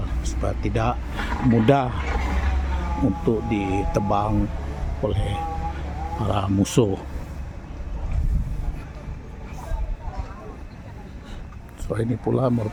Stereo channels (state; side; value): identical; both; correlation 1.00